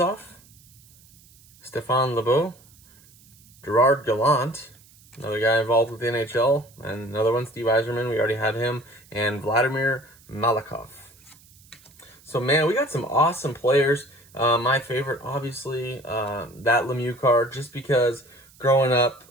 Stéphane Lemieux, Gerard Gallant, another guy involved with the NHL, and another one, Steve Yzerman, we already had him, and Vladimir Malakhov. So, man, we got some awesome players. My favorite, obviously, that Lemieux card, just because growing up,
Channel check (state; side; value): noise; right; hiss, 27 dB below the sound